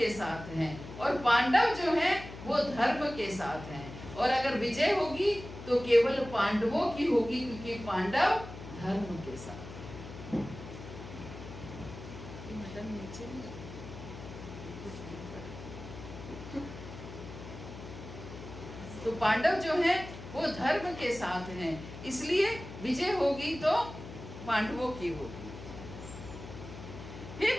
साथ हैं, और पांडव जो हैं वो धर्म के साथ हैं। और अगर विजय होगी तो केवल पांडवों की होगी, क्योंकि पांडव धर्म के साथ। तो पांडव जो हैं वो धर्म के साथ हैं, इसलिए विजय होगी तो पांडवों की होगी। हे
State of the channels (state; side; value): noise; left; hum, 12 dB below the sound